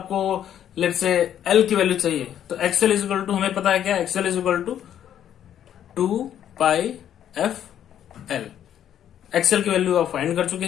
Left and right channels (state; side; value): quieter; right; 10.2 dB